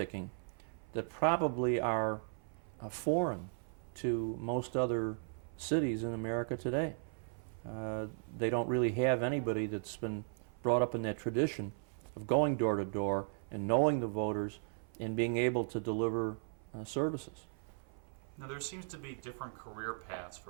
that probably are foreign to most other cities in America today. They don't really have anybody that's been brought up in that tradition of going door to door and knowing the voters and being able to deliver services. Now, there seems to be different career paths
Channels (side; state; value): left; silent; 53 dB below the other